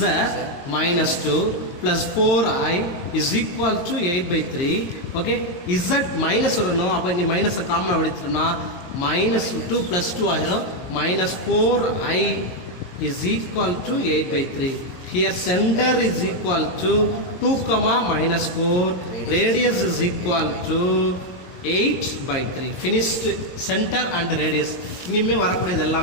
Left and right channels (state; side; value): late; right; 22 ms